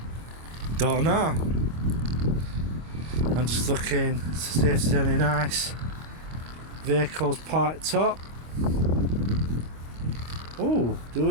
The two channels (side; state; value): left; late; 25 ms